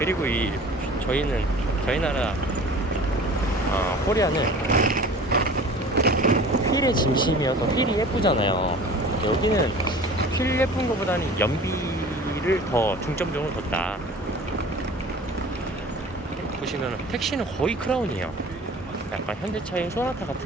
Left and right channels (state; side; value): normal; both; correlation 0.43